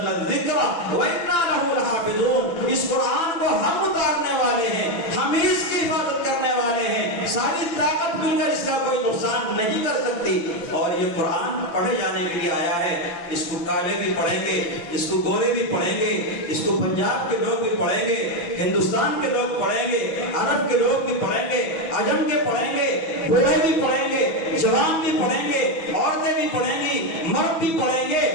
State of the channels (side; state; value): right; late; 6.1 ms